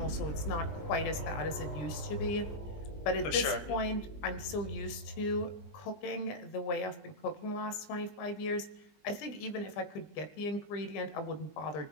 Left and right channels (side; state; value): right; late; 20 ms